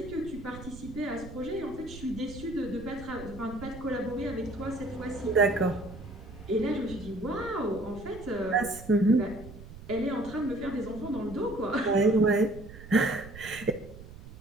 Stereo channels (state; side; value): noise; right; rumble, 15 dB below the sound